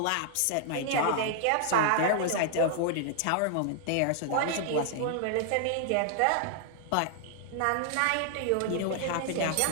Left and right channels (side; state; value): both; different; correlation 0.00